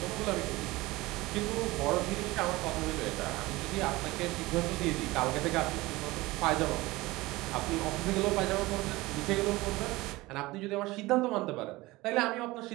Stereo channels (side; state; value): left; quieter; 20.3 dB